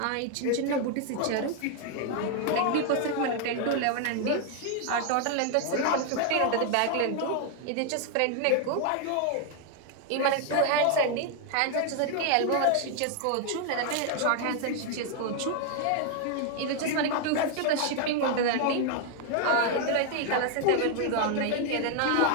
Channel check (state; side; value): different; both; correlation 0.00